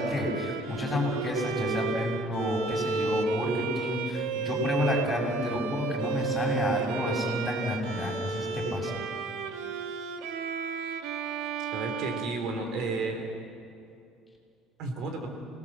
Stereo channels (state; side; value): normal; both; correlation 0.54